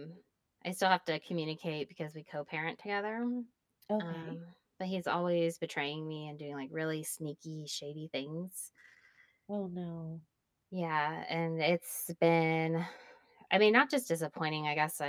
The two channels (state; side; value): identical; both; correlation 1.00